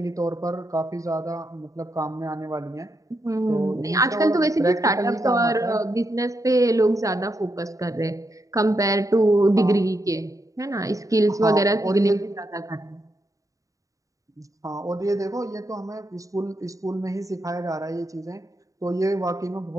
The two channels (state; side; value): late; left; 0.16 ms